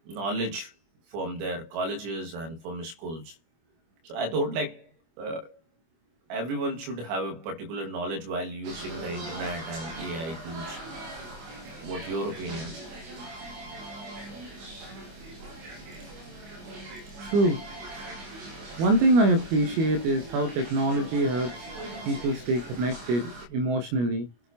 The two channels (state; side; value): late; left; 25 ms